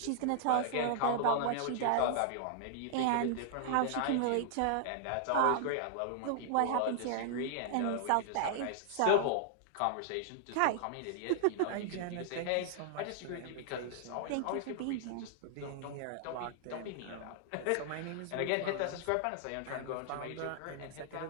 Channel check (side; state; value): both; different; correlation 0.00